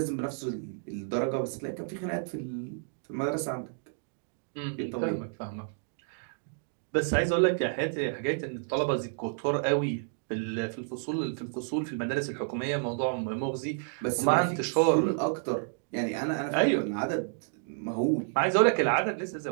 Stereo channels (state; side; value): silent; left; digital silence